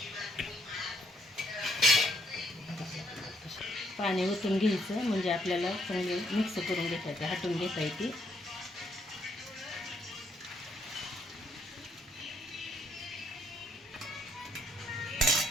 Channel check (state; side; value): normal; both; correlation 0.72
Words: पाणी ओतून घ्यायचं म्हणजे आपल्याला चांगली मिक्स करून घेता हटून घेता येते.